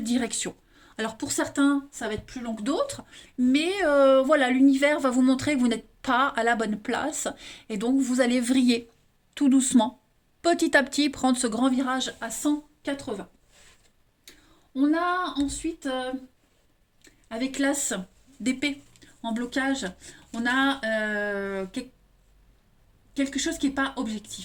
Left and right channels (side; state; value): both; identical; correlation 1.00